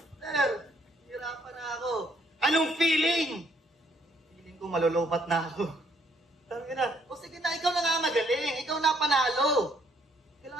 Sir, hirapan na ako. Anong feeling? Feeling ko malulupat na ako. Sabi na, o sige na, ikaw na nga magaling. Ikaw na panalo.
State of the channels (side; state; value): both; normal; correlation 0.67